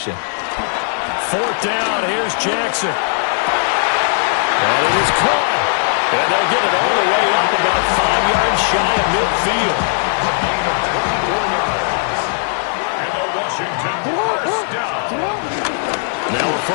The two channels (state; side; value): silent; right; 68 dB below the other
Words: Fourth down, here's Jackson. And it is caught. And they'll get it all the way up about 5 yards shy of midfield. Now a